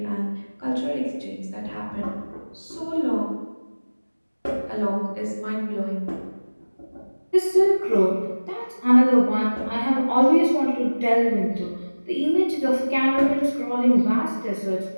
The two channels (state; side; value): inverted; both; correlation -1.00